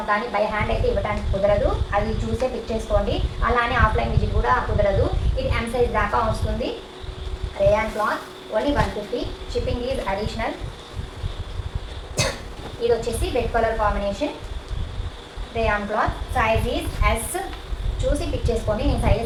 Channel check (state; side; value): identical; both; correlation 1.00